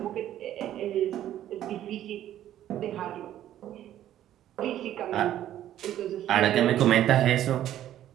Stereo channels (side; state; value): left; quieter; 12.1 dB